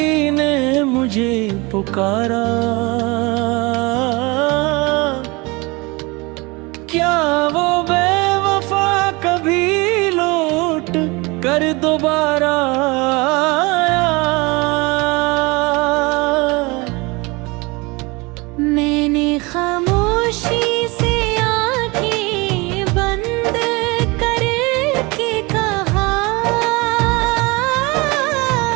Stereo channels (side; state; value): left; quieter; 25.4 dB